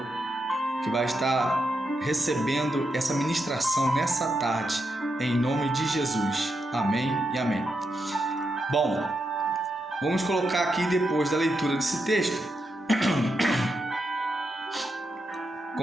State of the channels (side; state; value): both; normal; correlation 0.84